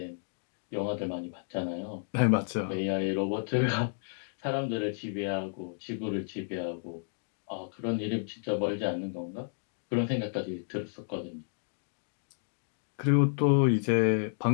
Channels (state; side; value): silent; right; digital silence